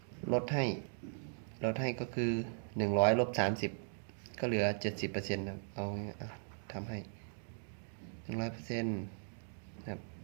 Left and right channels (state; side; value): silent; left; digital silence